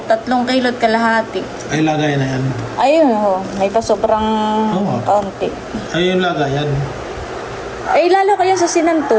3 kilo't kalahati. Ay, lagay na yan. Ayun ho. May pa sobrang kaunti. Ay, yung lagay yan. Ay, lalo kaya sa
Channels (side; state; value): both; identical; correlation 1.00